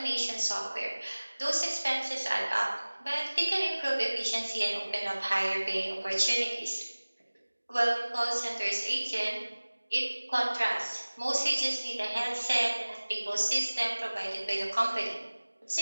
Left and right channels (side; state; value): both; inverted; correlation -1.00